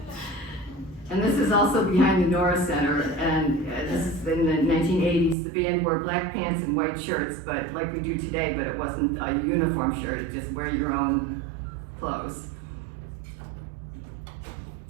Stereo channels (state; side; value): drops out; left; at 5.4 s